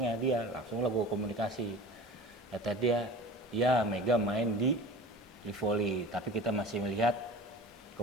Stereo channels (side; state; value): both; normal; correlation 0.37